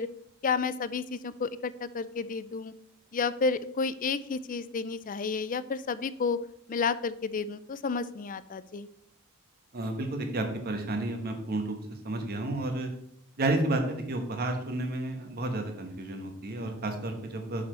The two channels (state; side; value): normal; both; correlation 0.27